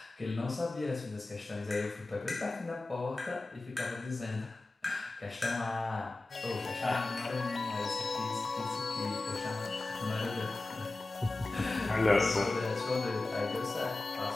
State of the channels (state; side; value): quieter; right; 3.1 dB